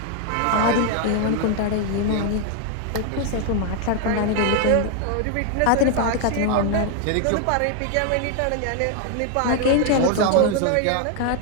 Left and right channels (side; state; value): both; different; correlation 0.00